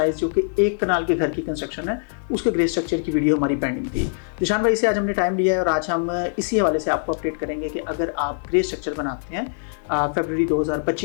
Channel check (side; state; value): right; silent; 64 dB below the other